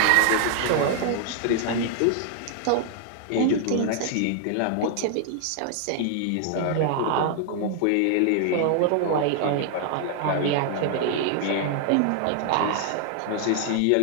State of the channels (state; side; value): different; both; correlation 0.00